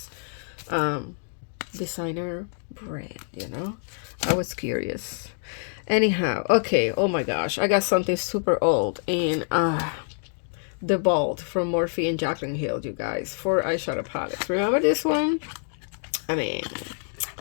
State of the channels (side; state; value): right; silent; digital silence